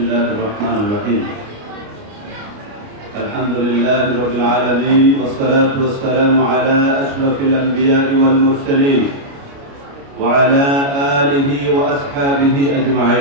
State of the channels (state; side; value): late; left; 29 ms